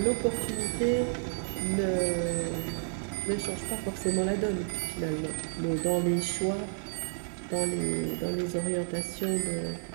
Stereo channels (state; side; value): silent; left; digital silence